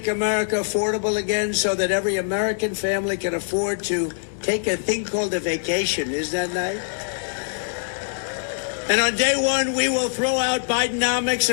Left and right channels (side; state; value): right; silent; digital silence